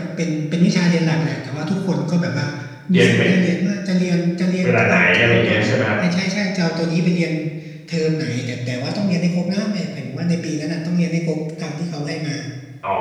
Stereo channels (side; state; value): both; identical; correlation 1.00